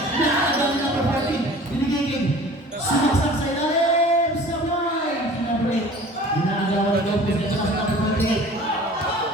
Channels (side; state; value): both; normal; correlation 0.45